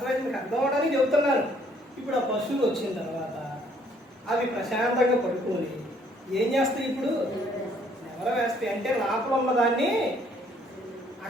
మీకు అర్థం అవడానికి చెబుతున్నాను. ఇప్పుడు ఆ పశువులు వచ్చిన తర్వాత అవి ప్రశాంతంగా పడుకొని ఏం చేస్తాయి? ఇప్పుడు ఎవరో వేస్తాయి అంటే లోపల ఉన్నదాన్ని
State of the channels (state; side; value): normal; both; correlation 0.64